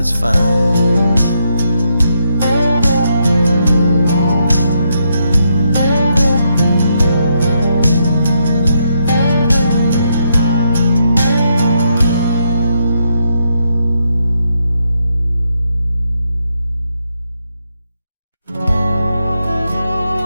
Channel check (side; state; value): both; inverted; correlation -0.79